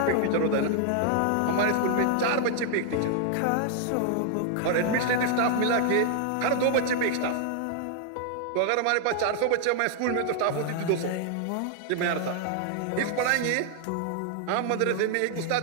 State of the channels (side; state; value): both; different; correlation 0.00